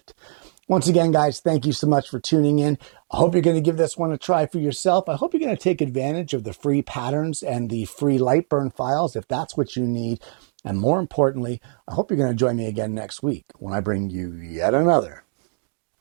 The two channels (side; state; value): left; silent; 64 dB below the other